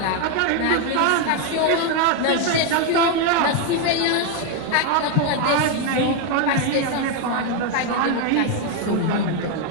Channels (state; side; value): different; both; correlation 0.01